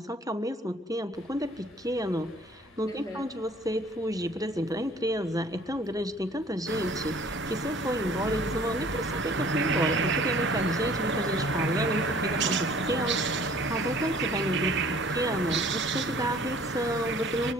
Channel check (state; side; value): normal; both; correlation 0.53